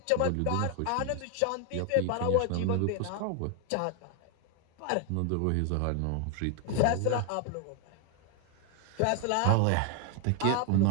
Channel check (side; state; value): both; different; correlation 0.01